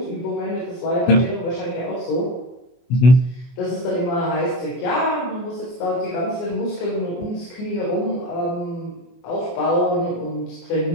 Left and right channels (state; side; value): late; right; 24 ms